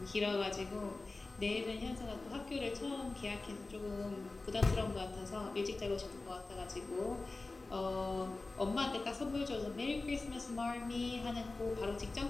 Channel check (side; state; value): right; quieter; 3.4 dB